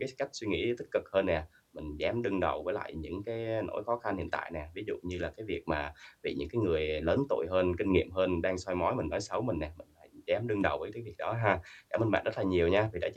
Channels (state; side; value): identical; both; correlation 1.00